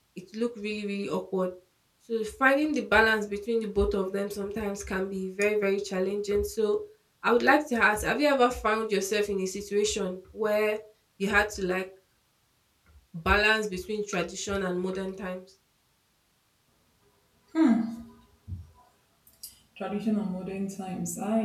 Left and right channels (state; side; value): identical; both; correlation 1.00